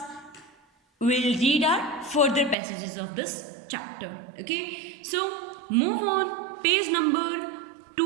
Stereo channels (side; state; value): left; drops out; at 2.6 s